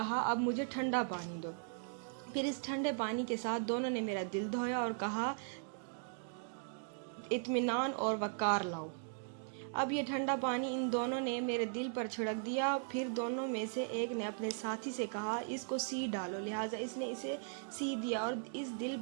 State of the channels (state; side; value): silent; left; digital silence